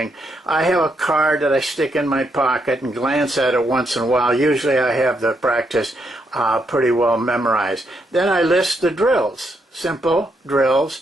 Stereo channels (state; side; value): normal; both; correlation 0.78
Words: I have a card that I stick in my pocket and glance at it once in a while. Usually I have the practice pretty well memorized. Then I list the drills, simple drills,